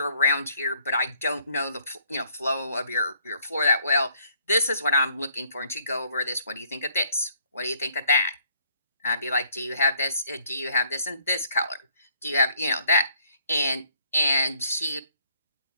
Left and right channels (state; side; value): inverted; both; correlation -0.65